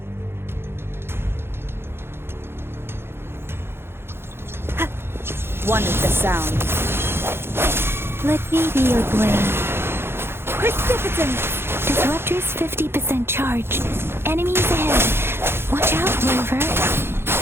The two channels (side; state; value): left; late; 0.11 ms